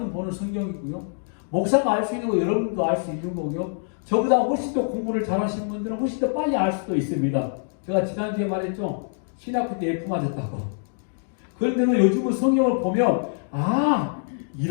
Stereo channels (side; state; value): right; silent; digital silence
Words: 보는 성경이고요. 목사가 알 수 있는 거 여러분도 알 수 있는 거고요. 저보다 훨씬 더 공부를 잘하시는 분들은 훨씬 더 빨리 알 수도 있습니다. 제가 지난주에 말했죠. 신학교 때 F 맞았다고. 그런데 요즘은 성경을 보면